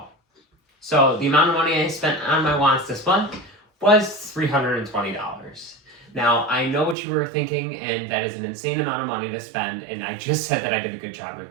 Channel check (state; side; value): drops out; left; at 7.0 s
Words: So the amount of money I spent on my wants this month was $320. Now, I know what you were thinking, and that is an insane amount of money to spend, and I just said that I did a good job in